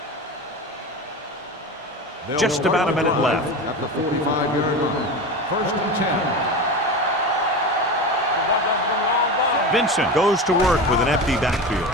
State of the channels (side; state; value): both; normal; correlation 0.26